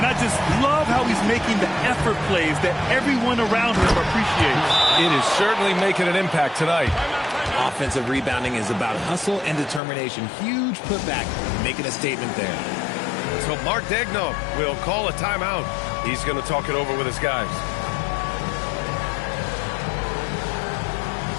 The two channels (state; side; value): drops out; right; at 9.8 s